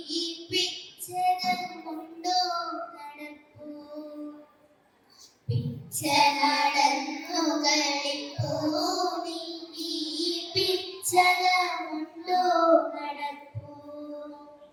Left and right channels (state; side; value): identical; both; correlation 1.00